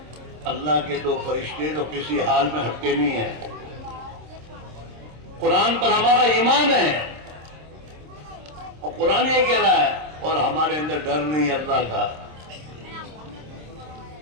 اللہ کے 2 فرشتے تو کسی حال میں ہٹتے نہیں ہیں. قرآن پر ہمارا ایمان ہے اور قرآن یہ کہہ رہا ہے، اور ہمارے اندر ڈر نہیں ہے اللہ کا.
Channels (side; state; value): left; late; 26 ms